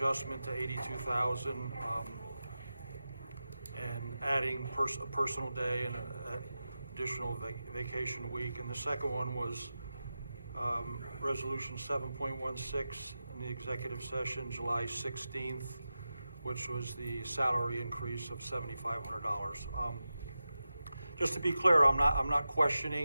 to 82,000, and adding a personal day and an additional vacation week. And the second one was Resolution 7.16 in the executive session, July 16th, which was the salary increase of $7,500. Just to be clear, I'm not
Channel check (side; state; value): both; inverted; correlation -0.92